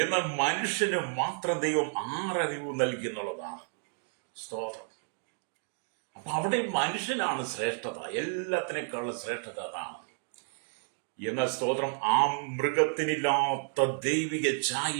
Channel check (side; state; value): left; silent; 57 dB below the other